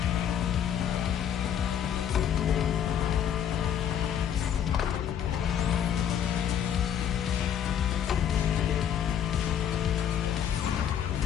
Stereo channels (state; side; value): quieter; right; 9.2 dB